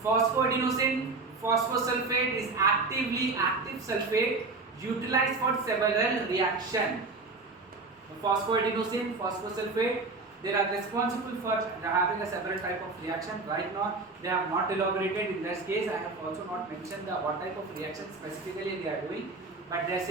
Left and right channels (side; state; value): left; quieter; 3.7 dB